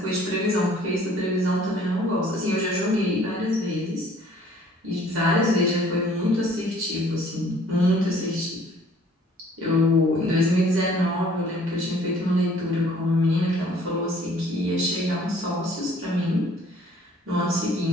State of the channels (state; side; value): normal; both; correlation 0.56